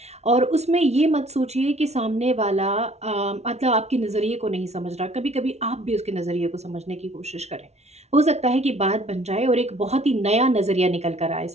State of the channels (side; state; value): left; late; 0.31 ms